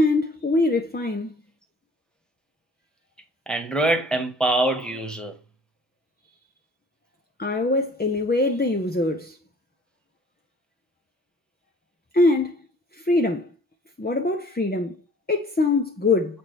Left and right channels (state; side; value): normal; both; correlation 0.52